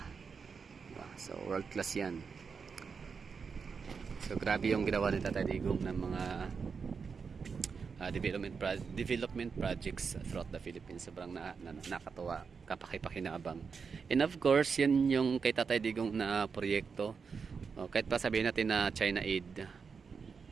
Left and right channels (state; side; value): quieter; left; 5.6 dB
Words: diba? So world class yan. So grabe yung ginawa ni Tatay Digong ng mga development projects throughout the Philippines. Sobrang nakatuwa, kapakipakinabang. And of course, yan yung kay Tatay Digong na proyekto. Kahit pa sabihin natin na China aid,